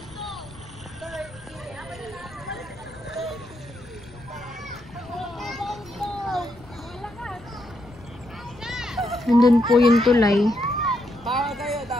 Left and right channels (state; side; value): noise; left; rumble, 22 dB below the sound